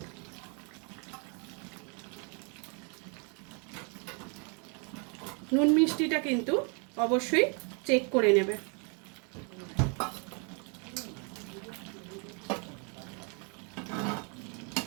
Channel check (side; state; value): left; quieter; 36.1 dB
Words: নুন মিষ্টিটা কিন্তু অবশ্যই চেক করে নেবে।